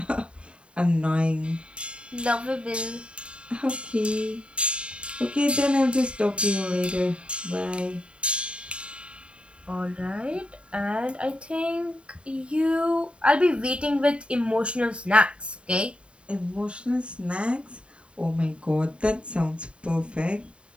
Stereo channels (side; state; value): left; late; 0.057 ms